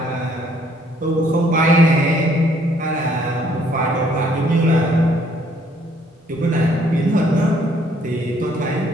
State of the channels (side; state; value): both; normal; correlation 0.64